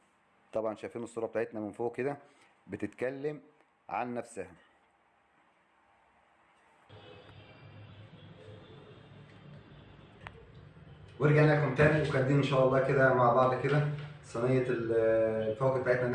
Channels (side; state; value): both; identical; correlation 1.00